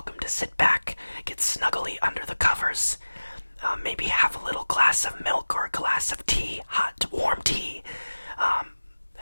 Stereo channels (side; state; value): both; inverted; correlation -1.00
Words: to sit back, get snuggly under the covers, maybe have a little glass of milk or a glass of tea, hot, warm tea.